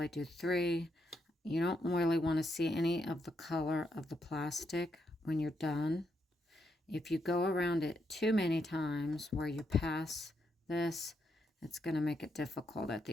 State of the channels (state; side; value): normal; both; correlation 0.80